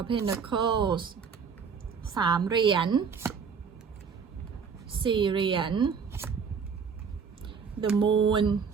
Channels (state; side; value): quieter; left; 6.1 dB